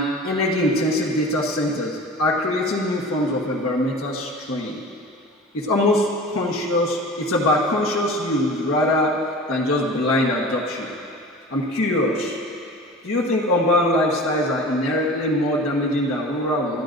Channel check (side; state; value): both; normal; correlation 0.38